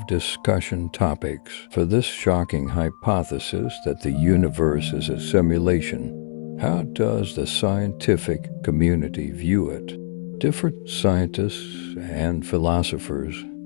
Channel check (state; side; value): silent; right; 63 dB below the other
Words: discussion topics for this shocking hypothesis that the universe is a simulation. How does the scientific community view it? Different scientists and philosophers